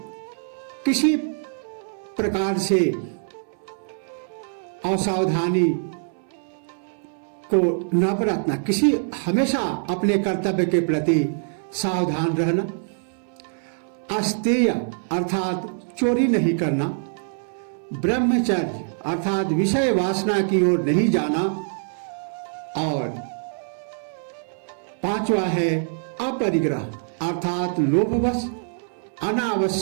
किसी प्रकार से असावधानी को न बरतना, हमेशा अपने कर्तव्य के प्रति सावधान रहना, अस्तेय अर्थात चोरी नहीं करना, ब्रह्मचर्य अर्थात विषय वासना की ओर नहीं जाना, और पांचवा है अपरिग्रह अर्थात लोभवश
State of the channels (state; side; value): silent; left; 62 dB below the other